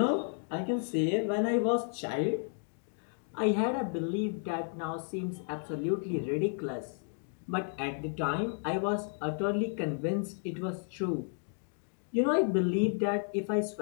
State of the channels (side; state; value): right; silent; 56 dB below the other